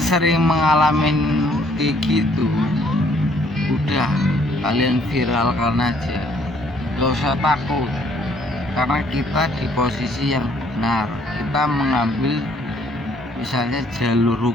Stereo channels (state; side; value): normal; both; correlation 0.64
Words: mengalami kayak gitu, udah kalian viralkan aja, gak usah takut, karena kita di posisi yang benar, kita mengambil misalnya jalur